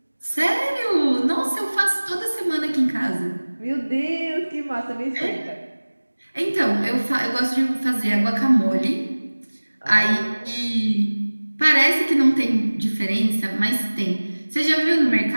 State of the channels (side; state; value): both; inverted; correlation -1.00